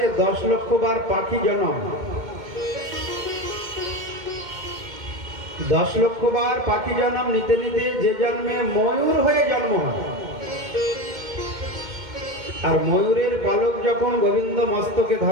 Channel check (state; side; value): late; left; 2.1 ms